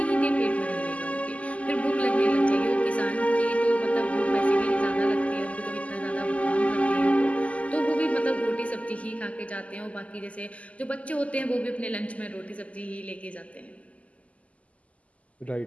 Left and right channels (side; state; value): right; late; 0.068 ms